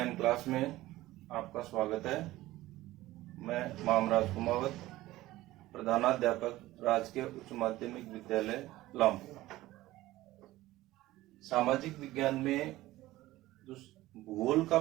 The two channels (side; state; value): left; quieter; 16.9 dB